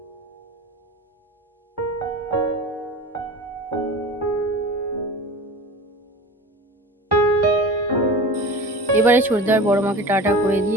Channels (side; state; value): both; normal; correlation 0.35